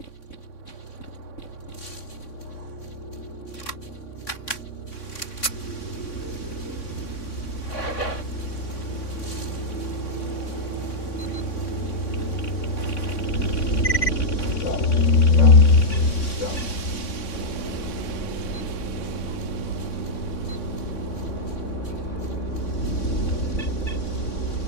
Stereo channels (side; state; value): right; late; 3.6 ms